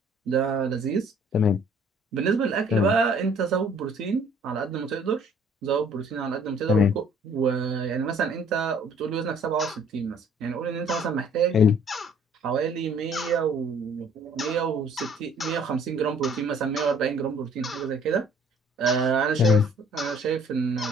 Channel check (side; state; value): both; normal; correlation 0.57